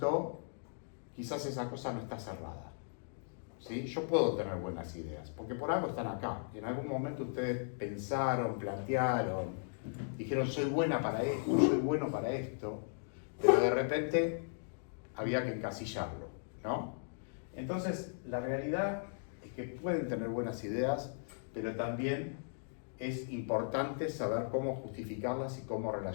quizás esa cosa no está cerrada. ¿Sí? Yo puedo tener buenas ideas, porque por algo están acá. En algún momento ustedes pensaron, plantearon, dijeron, soy buena para esto, soy bueno para esto, pero de repente había que encasillarlo, ¿no? Entonces, la realidad es que pueden tener buenas ideas, pero también es importante saber cómo justificarlas y cómo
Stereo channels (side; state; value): right; silent; digital silence